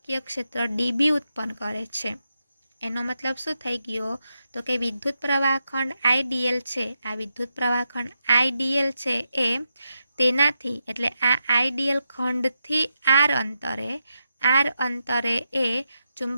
ક્ષેત્ર ડીબી ઉત્પન્ન કરે છે. એનો મતલબ શું થઈ ગયો? તો કે વિદ્યુત પ્રવાહ ખંડ આઈડીએલ છે, આ વિદ્યુત પ્રવાહ ખંડ આઈડીએલ છે એ તેનાથી એટલે આ આઈડીએલ ખંડથી આર અંતરે એ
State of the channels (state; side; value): inverted; both; correlation -0.86